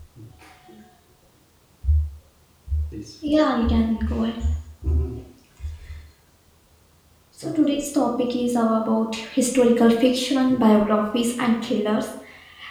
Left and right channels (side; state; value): both; identical; correlation 1.00